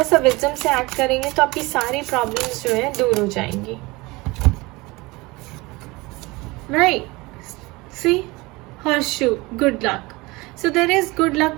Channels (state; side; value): quieter; left; 22.9 dB